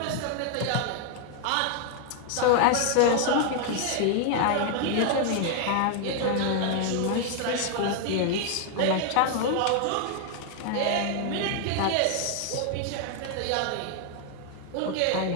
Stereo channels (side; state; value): both; different; correlation 0.00